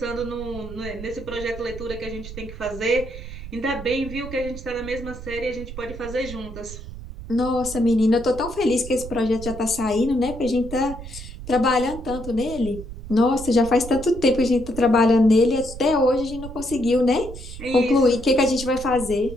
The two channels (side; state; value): right; noise; rumble, 12 dB below the sound